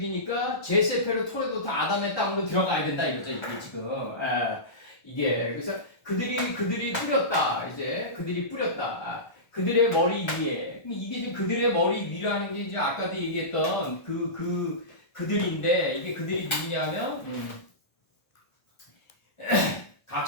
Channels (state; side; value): late; right; 1.3 ms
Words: 제세페르 토레도타 아담의 땅으로 들어가야 된다 이거죠. 이게 지금 이게 그래서 그들이 뿌렸다. 그들이 뿌렸다. 그들의 머리 위에 이게 지금 그들의 머리 위라는 게 이제 아까도 얘기했던 그들인데 이게 그들이 누구냐면 각